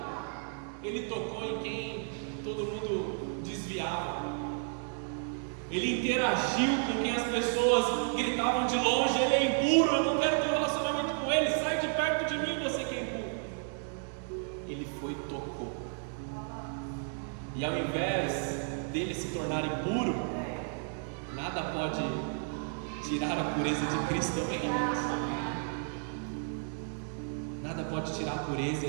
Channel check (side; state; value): left; silent; 56 dB below the other